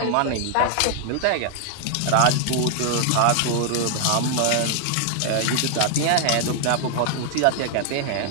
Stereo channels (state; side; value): different; both; correlation 0.00